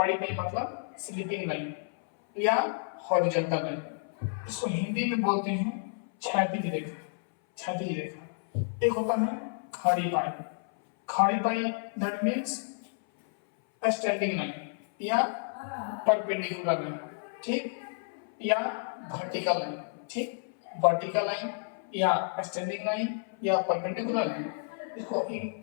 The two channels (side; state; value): right; silent; 57 dB below the other